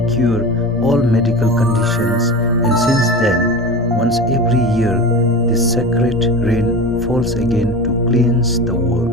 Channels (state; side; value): normal; both; correlation 0.29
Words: cure all medical conditions, and since then, once every year, this sacred rain falls again to cleanse the